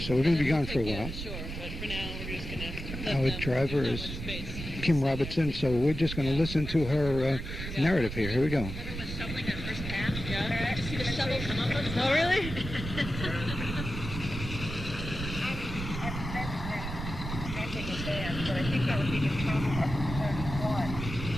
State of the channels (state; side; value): noise; right; rumble, 7 dB below the sound